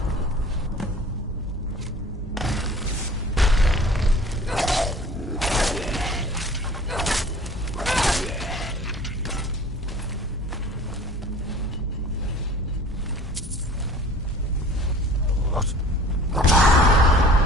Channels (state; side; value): normal; both; correlation 0.46